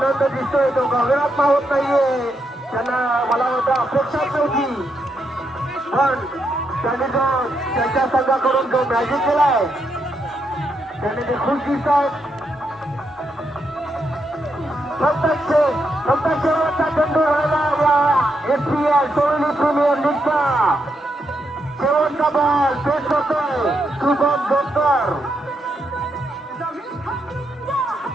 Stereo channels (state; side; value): normal; both; correlation 0.81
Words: दिसतोय तो गगनात होत नाहीये. त्यांना मला वाटतं अपेक्षाच नव्हती पण त्यांनी जो त्यांच्या संघाकडून जो मॅजिक केलाय त्यांनी ते खुश दिसत आहेत. फक्त शेवटचा चेंडू राहिला SPL सोळी प्रीमियर लीगचा शेवटचा बॉल पेश करतोय शुभम जोकर.